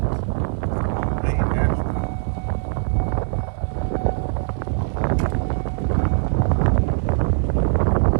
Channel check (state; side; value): silent; left; 65 dB below the other